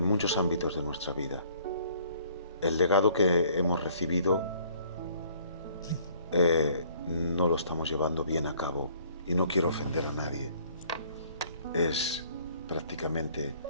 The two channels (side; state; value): both; inverted; correlation -0.59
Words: muchos ámbitos de nuestra vida. El legado que hemos recibido no lo estamos llevando bien a cabo, y no quiero ofender a nadie. Es prácticamente